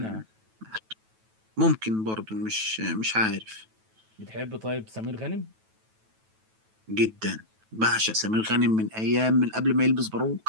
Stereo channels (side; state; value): left; late; 9.2 ms